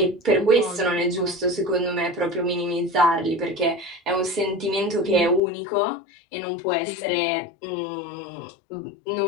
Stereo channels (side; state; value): right; drops out; at 5.4 s